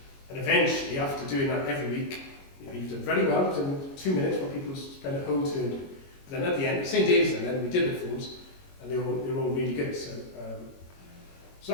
And eventually, after doing that every week, you've done very well. You've done 2 minutes what people spend a whole turn doing. But then at the end, St. David's, and then we did the forms, and they were all really good. So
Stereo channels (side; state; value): right; late; 22 ms